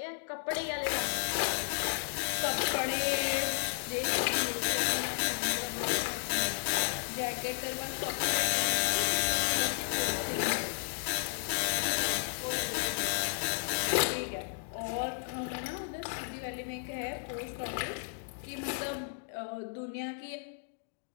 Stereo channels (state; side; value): silent; right; digital silence